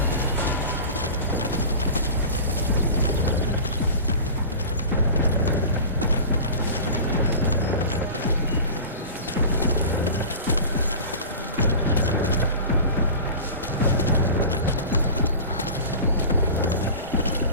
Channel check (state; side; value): inverted; both; correlation -0.35